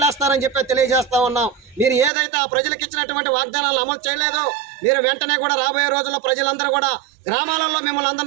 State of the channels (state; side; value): drops out; left; at 2.1 s